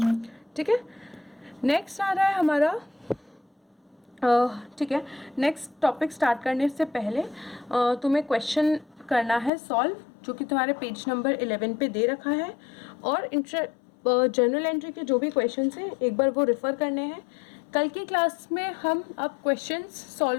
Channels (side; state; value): right; drops out; at 9.5 s